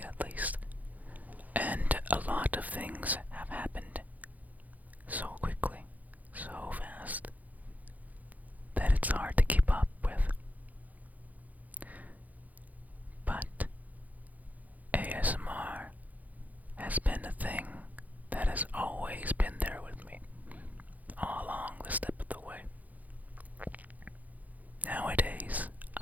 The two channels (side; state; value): left; late; 0.079 ms